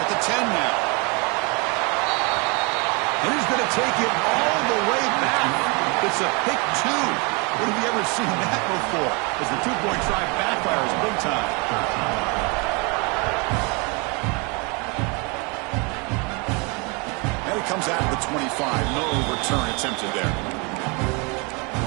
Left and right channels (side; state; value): left; quieter; 30.9 dB